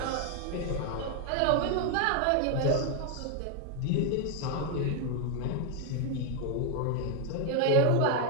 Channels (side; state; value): both; different; correlation 0.01